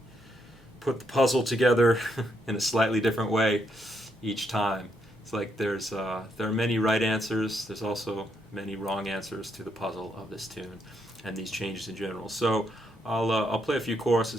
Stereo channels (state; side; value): normal; both; correlation 0.76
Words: put the puzzle together in a slightly different way each time. It's like there are many right answers. There's also many wrong answers to the puzzle of this tune and these changes in general. So I'll play a few